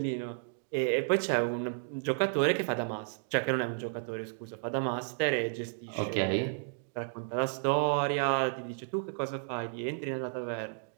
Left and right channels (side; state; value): left; silent; digital silence